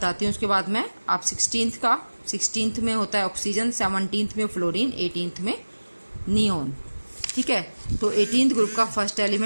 हूँ उसके बाद मैं। आप 16th में होता है ऑक्सीजन, 17th में फ्लोरीन, 18th में नियोन। ठीक है, तो 18th ग्रुप का फर्स्ट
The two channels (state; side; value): inverted; both; correlation -1.00